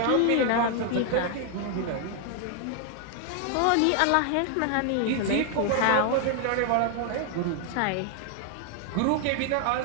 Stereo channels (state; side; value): different; both; correlation 0.00